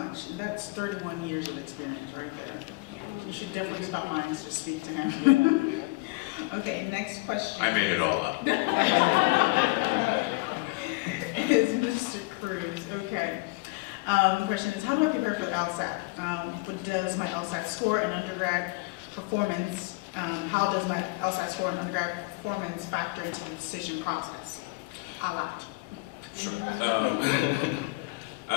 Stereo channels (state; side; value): quieter; right; 25.3 dB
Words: That's 31 years of experience right there. You should definitely stop mine to speak to him. Okay, next question. I made it all up. Is Mr. Cruz. Okay. The question is, how do I prepare for the LSAT? What does my LSAT score and undergrad performance, how does my LSAT score and undergrad performance factor into the decision process? A lot. Sure.